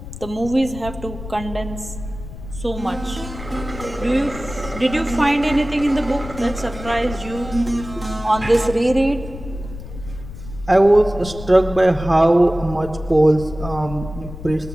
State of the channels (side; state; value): left; noise; rumble, 12 dB below the sound